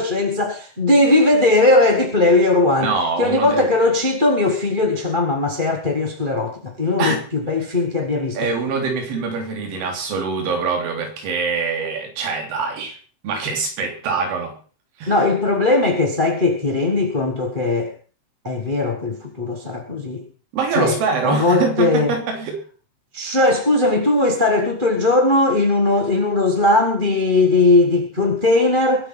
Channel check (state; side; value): late; left; 7.8 ms